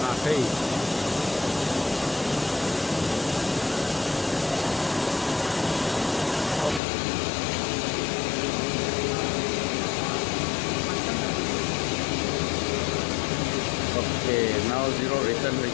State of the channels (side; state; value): right; drops out; at 6.8 s